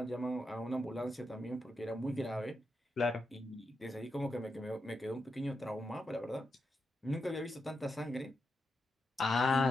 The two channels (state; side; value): normal; both; correlation 0.85